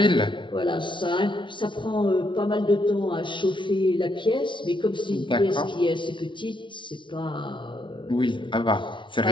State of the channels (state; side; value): late; right; 0.24 ms